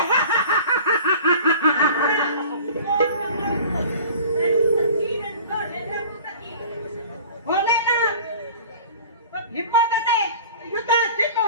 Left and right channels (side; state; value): both; inverted; correlation -0.43